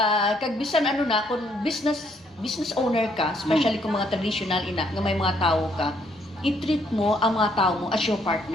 Kag bisan ano na, kung business owner ka, especially kung mga traditional ina, nga may mga tao ka, i-treat mo ang mga tao mo as your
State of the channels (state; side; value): normal; both; correlation 0.69